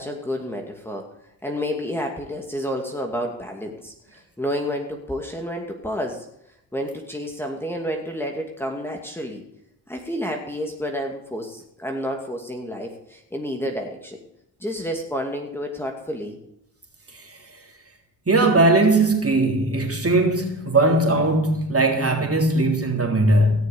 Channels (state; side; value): normal; both; correlation 0.34